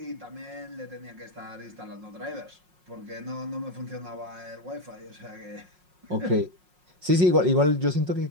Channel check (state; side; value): late; left; 5.5 ms